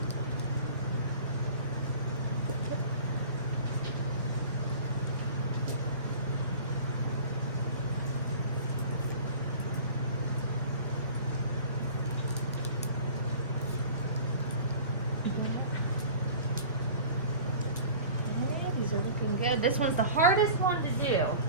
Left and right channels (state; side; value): inverted; both; correlation -0.42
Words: These are looking good. This one's the hardest one to do.